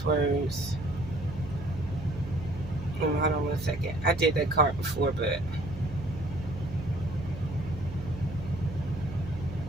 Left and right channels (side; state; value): right; noise; hum, 11 dB below the sound